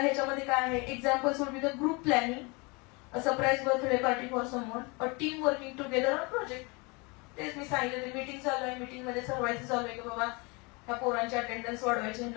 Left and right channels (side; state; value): right; quieter; 28.5 dB